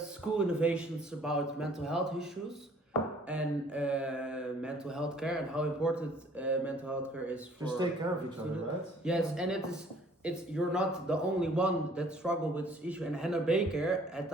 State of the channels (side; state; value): both; normal; correlation 0.57